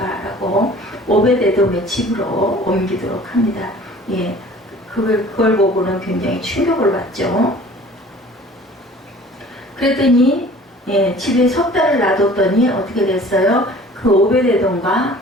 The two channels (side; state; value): both; normal; correlation 0.48